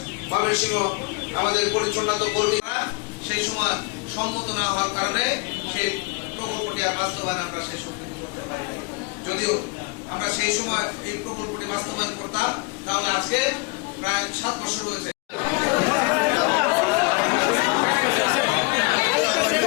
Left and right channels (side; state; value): right; quieter; 28.8 dB